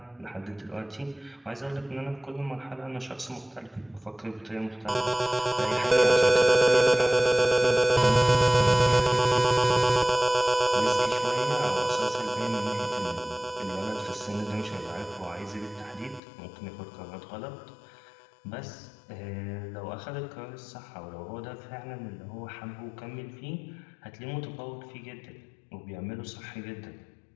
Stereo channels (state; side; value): drops out; right; at 16.2 s